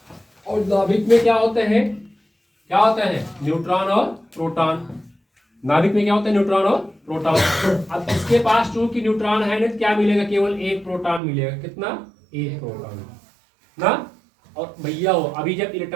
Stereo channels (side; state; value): left; drops out; at 11.2 s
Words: और नाभिक में क्या होते हैं, न्यूट्रॉन और प्रोटॉन। नाभिक में क्या होता है न्यूट्रॉन और प्रोटॉन। अब इसके पास चूंकि न्यूट्रॉन है ना, क्या मिलेगा, केवल एक प्रोटॉन मिलेगा, कितना, एक प्रोटॉन ना। और भैया हो अभी जब